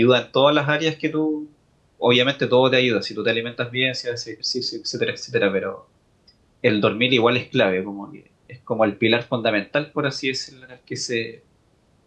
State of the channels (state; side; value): identical; both; correlation 1.00